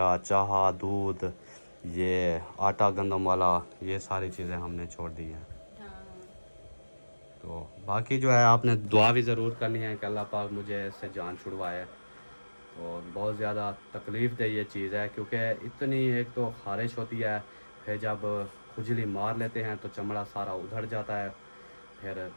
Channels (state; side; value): inverted; both; correlation -1.00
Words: चाह, दूध, ये आटा गंदम वाला, ये सारी चीज़ें हमने छोड़ दी हैं। तो बाकी जो है आपने दुआ भी ज़रूर करनी है कि अल्लाह पाक मुझे इससे जान छुड़वाए। और बहुत ज़्यादा तकलीफ़ दे ये चीज़ है, क्योंकि इतनी एक तो ख़ारिश होती है, फिर जब खुजली मार लेते हैं तो चमड़ा सारा उधड़ जाता है, फिर